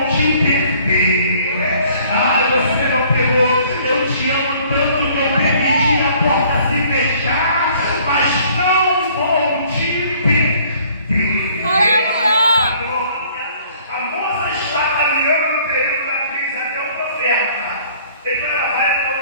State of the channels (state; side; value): inverted; both; correlation -0.57